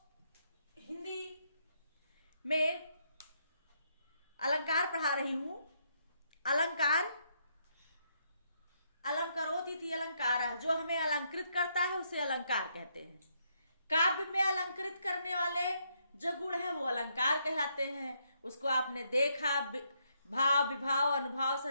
हिंदी में अलंकार पढ़ा रही हूँ। अलंकार अलंकरोति अलंकार, जो हमें अलंकृत करता है उसे अलंकार कहते हैं। काव्य में अलंकृत करने वाले जो गुण हैं वो अलंकार कहलाते हैं। उसको आपने देखा, भाव, विभाव, अनुभाव,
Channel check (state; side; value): inverted; both; correlation -0.75